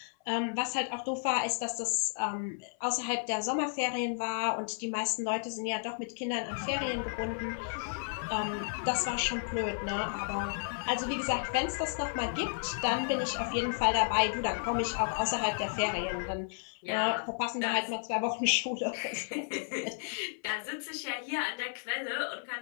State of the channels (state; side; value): silent; right; 56 dB below the other